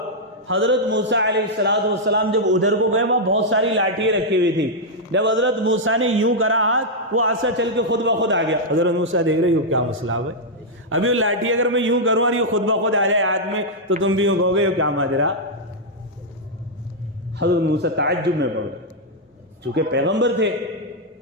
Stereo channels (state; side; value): normal; both; correlation -0.04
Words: حضرت موسیٰ علیہ السلام جب ادھر کو گئے وہاں بہت ساری لاٹھیاں رکھی ہوئی تھی، جب حضرت موسیٰ نے یوں کرا ہاتھ، وہ عصا چل کے خود بخود آ گیا۔ حضرت موسیٰ دیکھ رہے ہو کیا مسئلہ ہے، ابھی وہ لاٹھی اگر میں یوں کروں اور یہ خود بخود آ جائے ہاتھ میں تو تم بھی یوں کہو گے کیا ماجرا۔ حضرت موسیٰ تعجب میں پڑ گئے، چونکہ پیغمبر تھے،